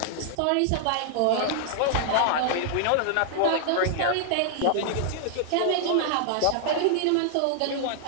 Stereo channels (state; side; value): different; both; correlation -0.01